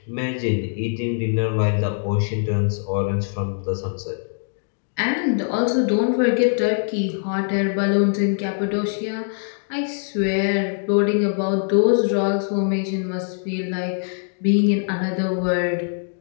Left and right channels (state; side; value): silent; right; digital silence